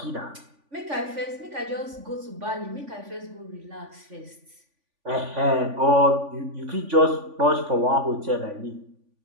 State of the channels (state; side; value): late; left; 3.5 ms